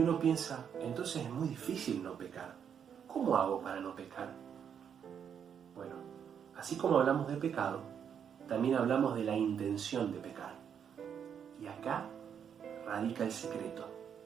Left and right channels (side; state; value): left; quieter; 8.0 dB